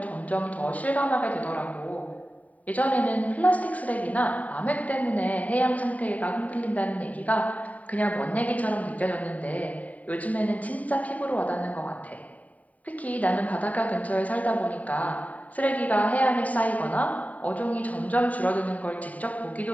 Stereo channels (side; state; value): right; late; 0.071 ms